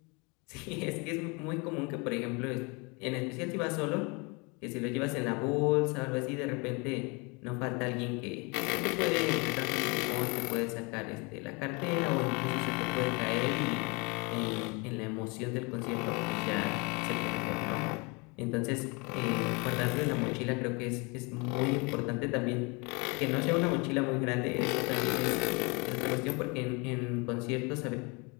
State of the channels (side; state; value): right; quieter; 29.5 dB